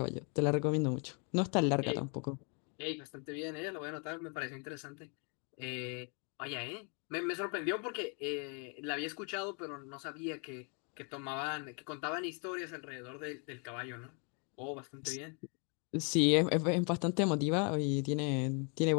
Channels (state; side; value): quieter; right; 37.2 dB